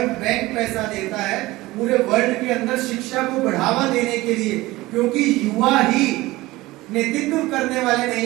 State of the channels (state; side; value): quieter; left; 19.2 dB